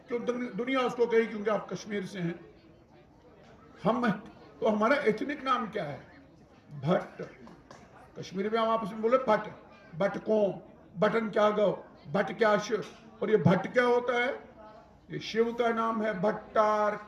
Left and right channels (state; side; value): identical; both; correlation 1.00